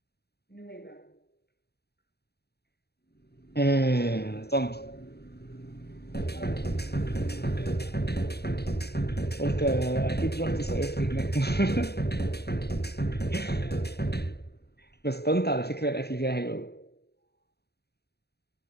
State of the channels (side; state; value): right; late; 0.47 ms